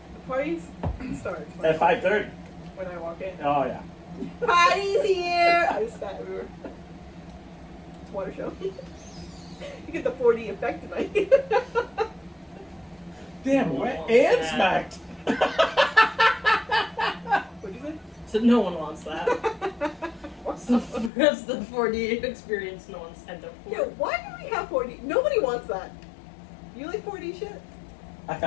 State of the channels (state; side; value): drops out; right; at 21.1 s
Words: the parties starts At 5:30. when I walk in. Oh yeah. Party's here! I just spat everywhere. It's a water show. You get the 4D effect tonight. Damn, wet and smacked. What'd you say? So no one wants that. That's the 4D experience no one signed up for. Yeah, why do we have 4D? Nobody wants that. You like 4D shit? I